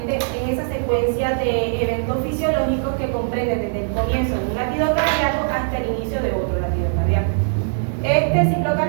es esa secuencia de eventos fisiológicos que comprende desde el comienzo de un latido cardíaco hasta el inicio de otro latido cardíaco. Este ciclo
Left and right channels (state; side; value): silent; left; 65 dB below the other